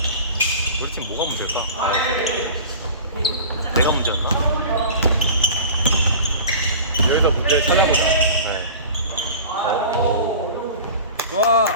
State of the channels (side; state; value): both; inverted; correlation -0.38